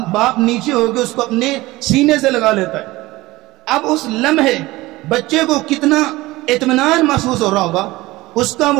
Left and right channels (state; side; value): quieter; left; 19.3 dB